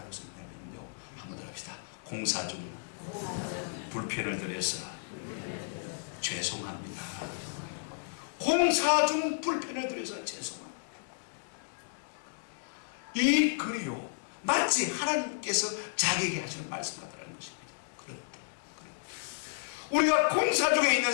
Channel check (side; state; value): right; silent; digital silence